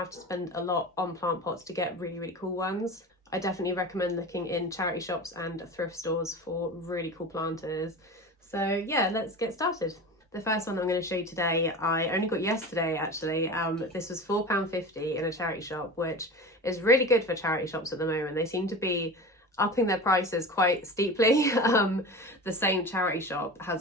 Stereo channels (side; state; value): both; normal; correlation 0.31